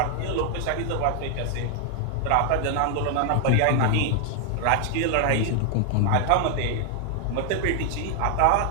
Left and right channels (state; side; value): different; both; correlation 0.00